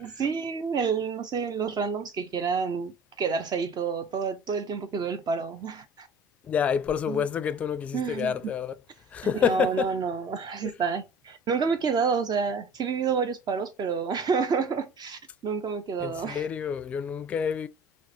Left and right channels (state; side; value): normal; both; correlation 0.44